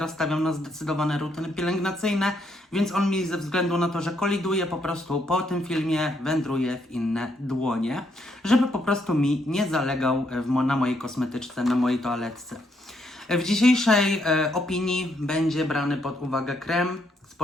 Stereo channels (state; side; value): normal; both; correlation 0.74